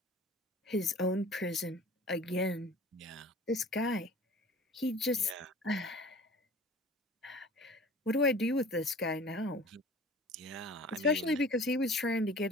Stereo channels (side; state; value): both; normal; correlation 0.44